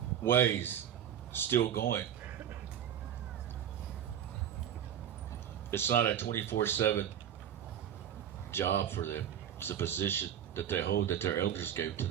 ways still going. It's not a 24/7 job for them. It's a position that they hold, that their elders gave to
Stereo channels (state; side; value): quieter; left; 9.8 dB